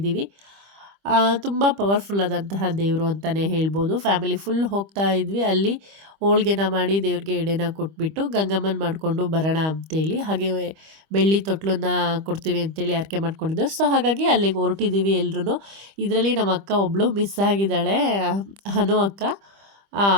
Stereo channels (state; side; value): late; left; 25 ms